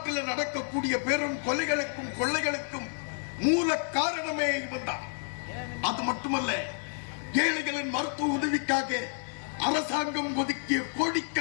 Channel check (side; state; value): right; silent; 58 dB below the other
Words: நடக்கக்கூடிய பெரும் கொலைகளுக்கும் கொள்ளைகளுக்கும் மூல காரணமே இவன் தான். அது மட்டுமல்ல, ஏழைகளின் மருத்துவ உதவிக்காக அரசாங்கம் ஒதுக்கிய